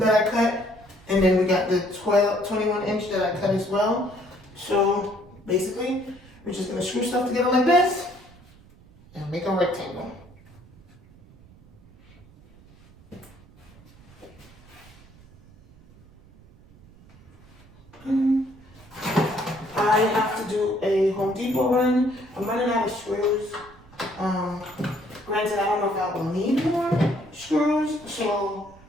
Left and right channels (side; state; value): right; noise; rumble, 24 dB below the sound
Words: I cut, and then we got the 21-inch that I cut as well. So, basically, we're just gonna screw stuff together like this, and make a rectangle. I have to do a Home Depot run. I'm running out of screws. Granted, I don't know if I will need more screws, so